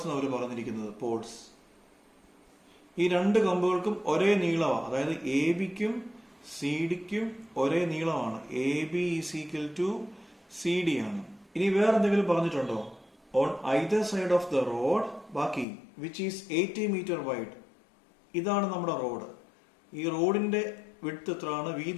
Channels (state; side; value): drops out; right; at 15.7 s